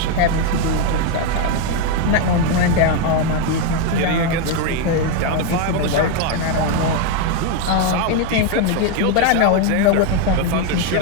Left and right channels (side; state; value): both; different; correlation 0.01